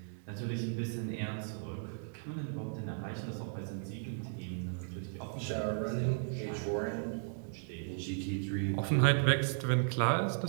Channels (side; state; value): left; silent; digital silence